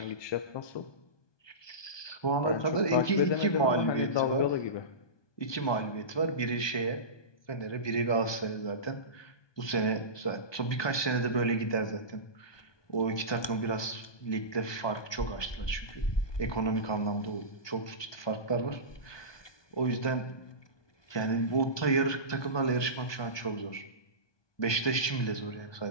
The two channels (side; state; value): right; late; 1.2 ms